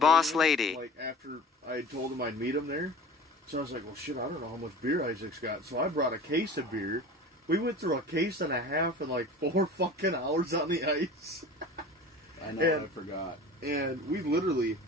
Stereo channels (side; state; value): both; normal; correlation 0.39